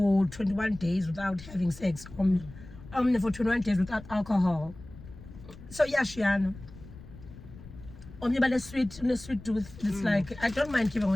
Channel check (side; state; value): left; noise; rumble, 17 dB below the sound